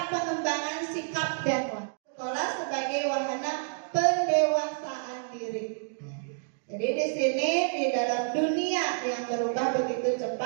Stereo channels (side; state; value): left; silent; digital silence